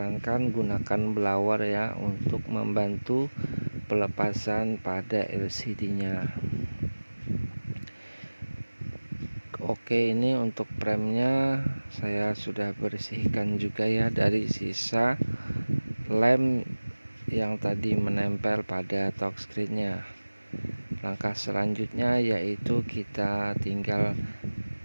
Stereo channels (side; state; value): both; inverted; correlation -1.00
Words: gunakan blower ya untuk membantu pelepasan pada LCD-nya. Oke, ini untuk premnya saya sudah bersihkan juga ya dari sisa lem yang tadi menempel pada touchscreen-nya. Langkah selanjutnya yaitu kita tinggal